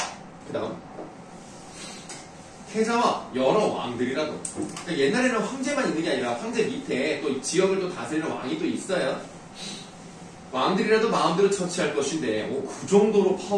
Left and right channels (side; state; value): both; identical; correlation 1.00